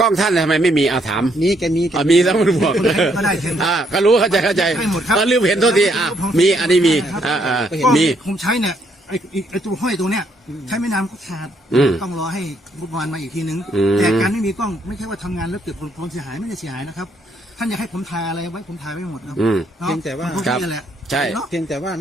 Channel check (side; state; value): both; normal; correlation 0.72